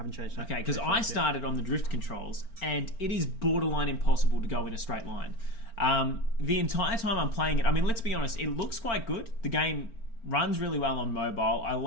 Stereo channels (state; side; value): late; right; 4.4 ms